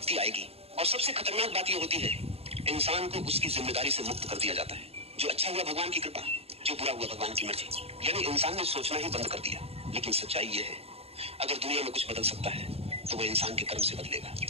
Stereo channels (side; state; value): left; late; 0.29 ms